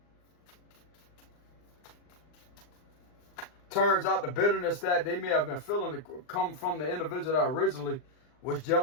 Turns out the bitterness that they may have been feeling to come from the individual that originally was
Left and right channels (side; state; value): right; late; 39 ms